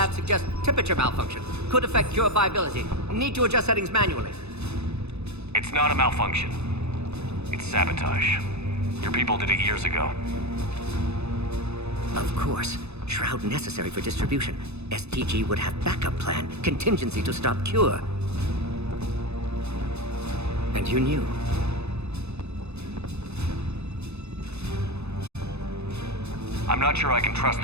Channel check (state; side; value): late; left; 0.80 ms